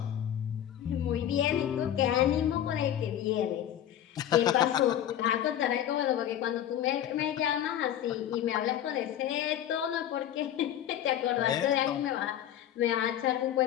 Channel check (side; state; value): right; quieter; 11.0 dB